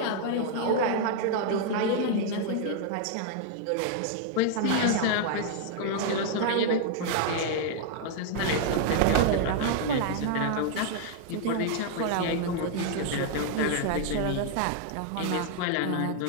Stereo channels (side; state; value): both; different; correlation 0.00